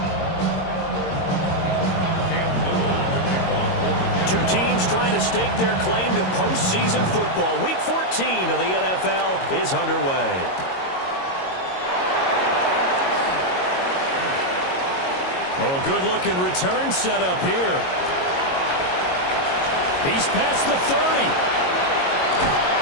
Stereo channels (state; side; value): late; right; 22 ms